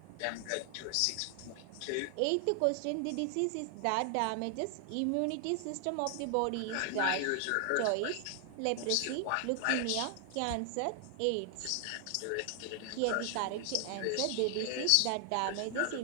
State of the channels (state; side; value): different; both; correlation 0.00